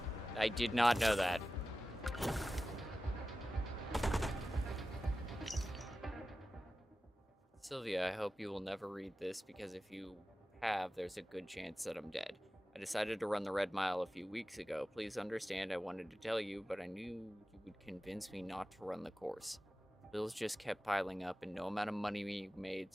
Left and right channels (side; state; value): both; normal; correlation 0.94